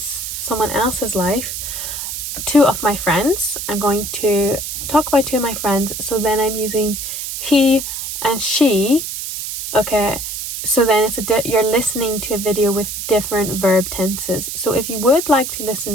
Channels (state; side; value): noise; right; hiss, 6 dB below the sound